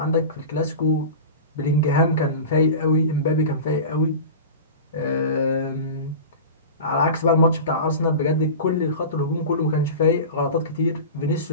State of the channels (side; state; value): both; inverted; correlation -0.31